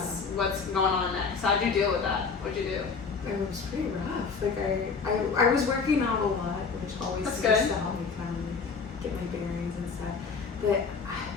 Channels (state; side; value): quieter; right; 5.2 dB